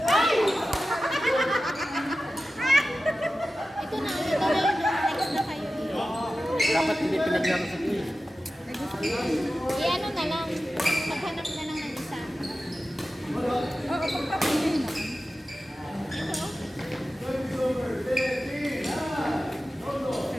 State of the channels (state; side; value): normal; both; correlation 0.94